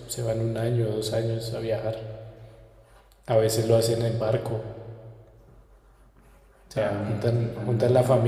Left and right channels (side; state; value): both; identical; correlation 1.00